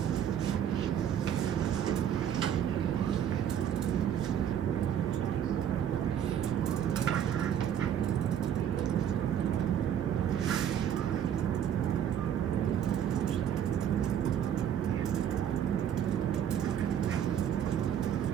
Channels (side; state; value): left; quieter; 9.5 dB